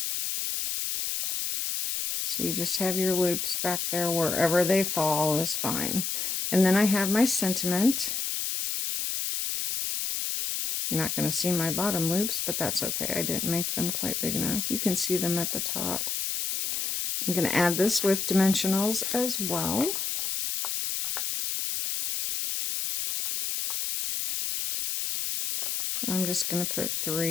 So you just have your loops back there, wherever they fall is fine. And then I have my sentiment. You're not going to see my bottom loops, but that's okay. I didn't make them quite big enough. You can see them at the top. I'm going to add this with dimensionals as well. I'm just going to put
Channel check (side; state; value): left; noise; hiss, 1 dB below the sound